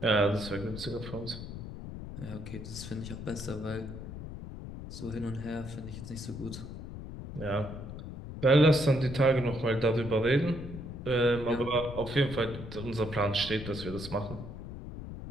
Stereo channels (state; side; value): noise; left; rumble, 10 dB below the sound